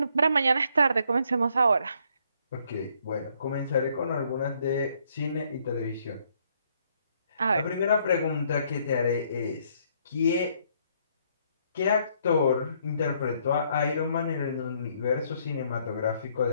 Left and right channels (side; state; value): both; inverted; correlation -0.69